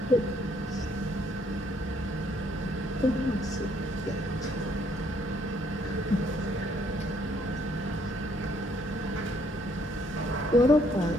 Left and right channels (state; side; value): normal; both; correlation 0.67